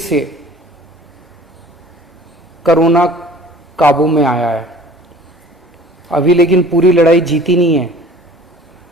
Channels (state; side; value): normal; both; correlation 0.47